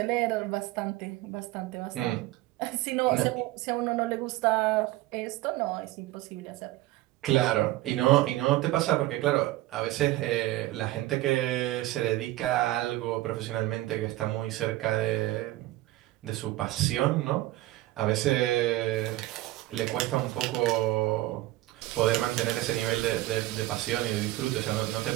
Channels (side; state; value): left; quieter; 17.1 dB